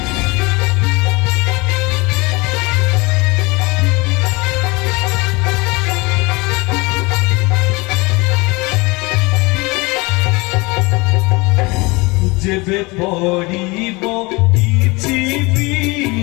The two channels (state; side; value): quieter; right; 25.1 dB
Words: যেবে পড়িব কিছু